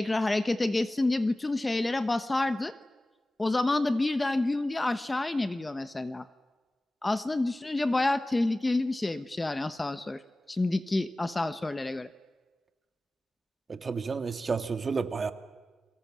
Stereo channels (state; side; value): normal; both; correlation 0.97